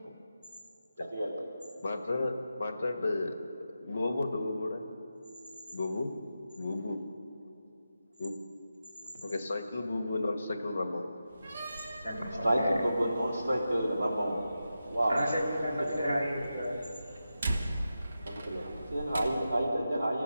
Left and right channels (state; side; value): inverted; both; correlation -0.90